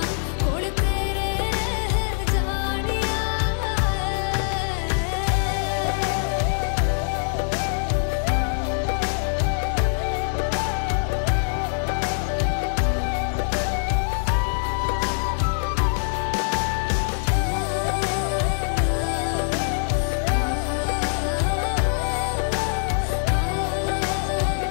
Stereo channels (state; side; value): silent; right; digital silence